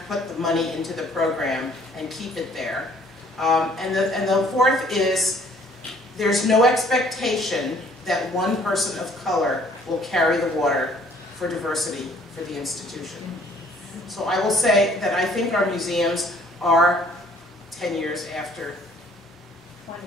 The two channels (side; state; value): both; normal; correlation 0.58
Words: put the money into the program and keep it there. And the fourth is there's no expectation that one person of color will carry the water for diversity for the institution. So I will say that I think our museums are 10 years after,